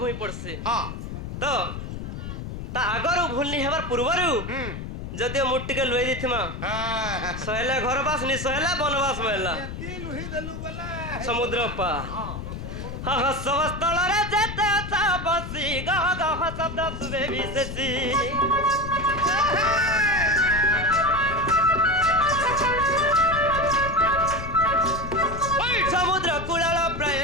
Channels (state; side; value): noise; left; rumble, 7 dB below the sound